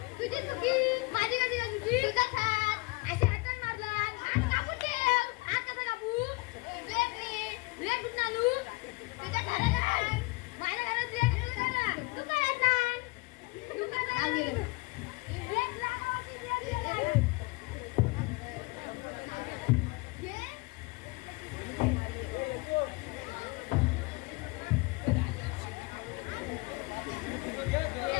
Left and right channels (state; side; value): quieter; right; 25.4 dB